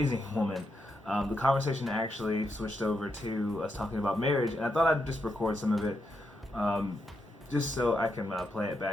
woman. The conversation actually switched over to us talking about marriage, and I thought I'd just record some of it, um, just so I can play it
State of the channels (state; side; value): normal; both; correlation 0.83